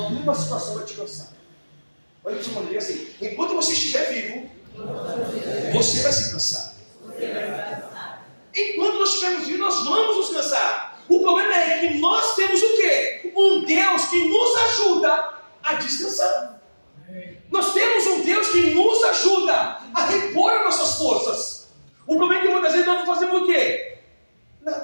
situação vai te cansar. Olha que eu assim: enquanto você estiver vivo, você vai se cansar. Enquanto nós estivermos vivos, nós vamos nos cansar. O problema é que nós temos o quê? Um Deus que nos ajuda a descansar. Nós temos um Deus que nos ajuda a repor as nossas forças. O problema é que muitas vezes nós não fazemos o quê?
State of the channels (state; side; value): inverted; both; correlation -1.00